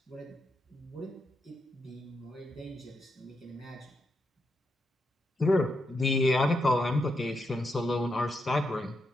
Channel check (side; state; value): both; normal; correlation 0.82